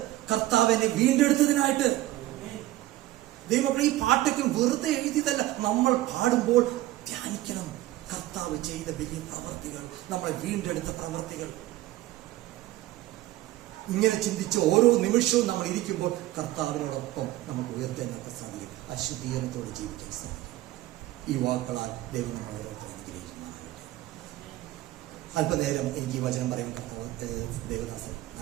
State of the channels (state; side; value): quieter; left; 16.2 dB